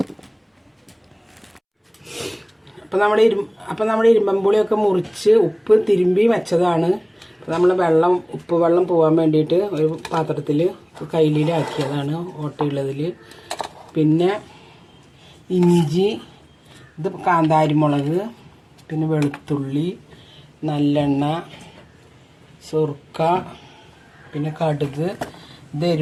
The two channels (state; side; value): identical; both; correlation 1.00